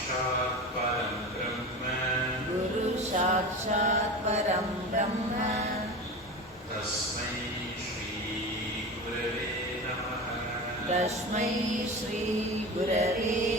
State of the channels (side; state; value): both; normal; correlation 0.29